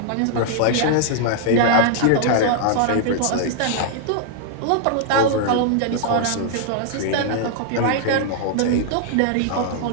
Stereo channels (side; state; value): both; different; correlation -0.01